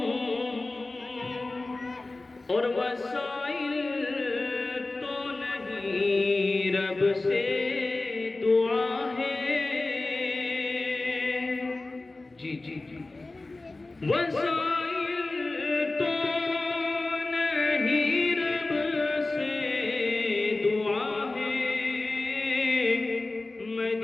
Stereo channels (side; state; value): right; quieter; 3.1 dB